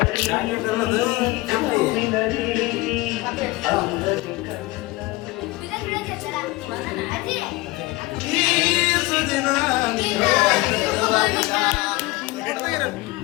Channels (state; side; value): quieter; right; 21.0 dB